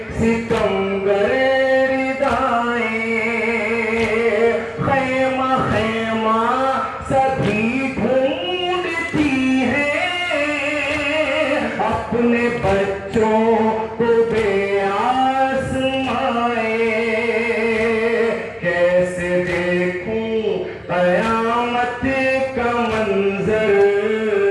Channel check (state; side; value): identical; both; correlation 1.00